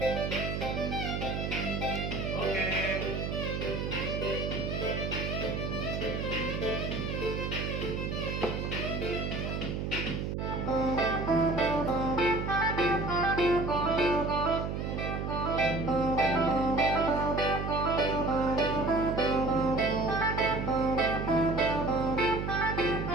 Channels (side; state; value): right; noise; hum, 3 dB below the sound